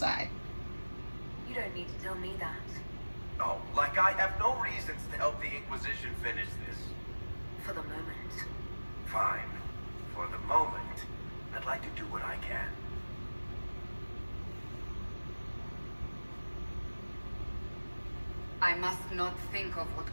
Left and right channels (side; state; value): both; inverted; correlation -1.00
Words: You don't need to tell me that. Oh, like I have no reasons to help the Inquisition finish this. For the moment. Fine. For the moment, I'd like to do what I can. I must not think of what